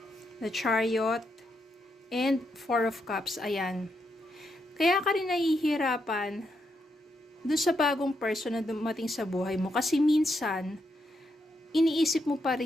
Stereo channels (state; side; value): normal; both; correlation 0.81